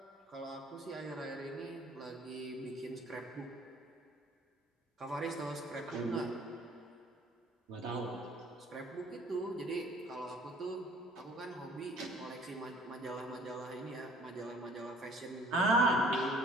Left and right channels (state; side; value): normal; both; correlation 0.55